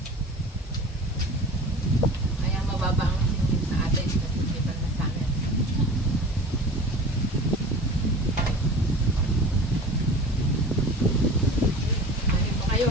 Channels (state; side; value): normal; both; correlation 0.38